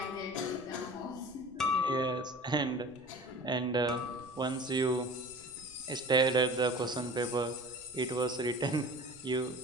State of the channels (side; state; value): right; noise; rumble, 27 dB below the sound